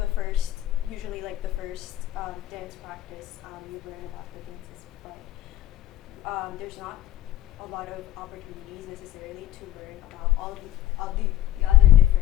first, usually like the first dance practice, you learn about the dances, but there's not a lot of opportunities necessarily to learn about all the other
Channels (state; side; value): quieter; right; 13.4 dB